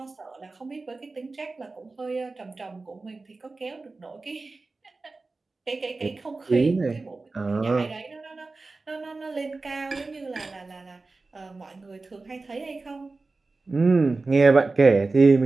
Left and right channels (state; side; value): quieter; left; 3.6 dB